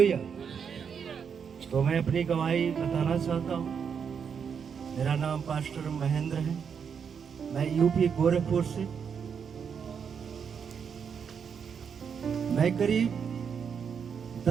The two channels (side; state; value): left; quieter; 6.9 dB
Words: तो मैं अपनी गवाही बताना चाहता हूँ। मेरा नाम पास्टर महेंद्र है, मैं यूपी गोरखपुर से। मैं करीब